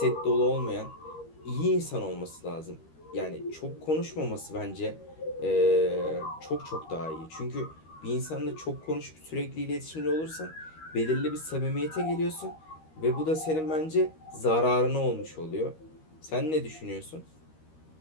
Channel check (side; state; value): right; late; 13 ms